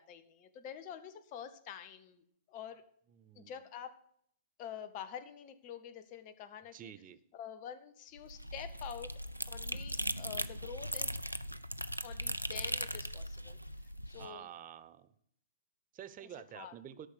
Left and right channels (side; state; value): both; inverted; correlation -0.69